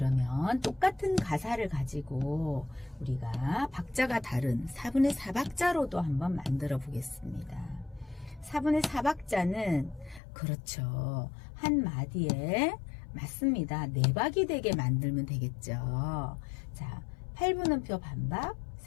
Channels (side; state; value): right; drops out; at 10.2 s